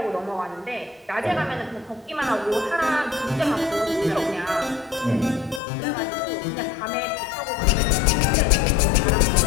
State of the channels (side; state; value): right; drops out; at 5.6 s